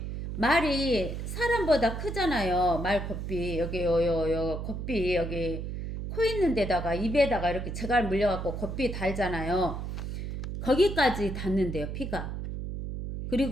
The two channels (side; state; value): right; noise; hum, 5 dB below the sound